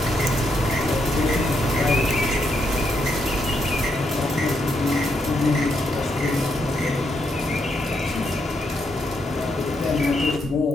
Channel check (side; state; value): both; normal; correlation 0.78